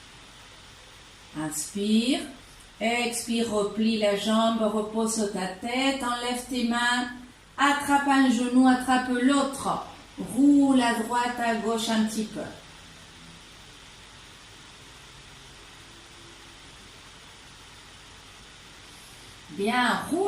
Inspire. Expire, replie la jambe, repose ta tête, enlève tes mains, attrape un genou, attrape l'autre. Roule à droite, à gauche un petit peu. Bien,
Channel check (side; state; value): both; identical; correlation 1.00